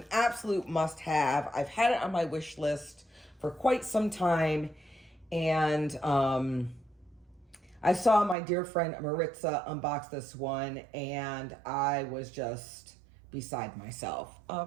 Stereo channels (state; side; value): drops out; left; at 8.3 s